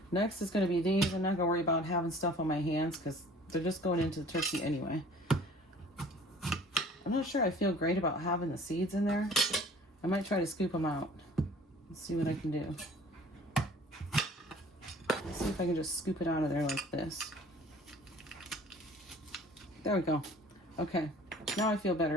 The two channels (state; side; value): normal; both; correlation 0.49